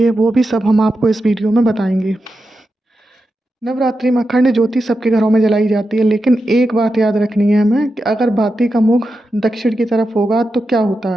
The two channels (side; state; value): both; normal; correlation 0.89